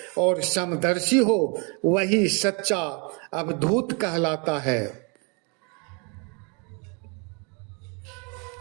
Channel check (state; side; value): quieter; left; 34.0 dB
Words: और समदर्शी हो, वही सच्चा अवधूत कहलाता है।